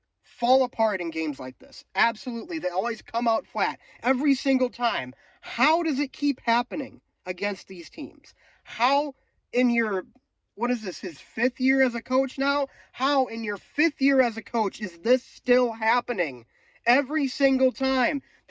fall apart in games like this. Absolutely. They always come out flat every single time. How does it keep happening against these teams? How in your, what is this, his 5th year as a coach now? How in your 5th year as a coach is this still happening? Every single time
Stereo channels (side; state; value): both; identical; correlation 1.00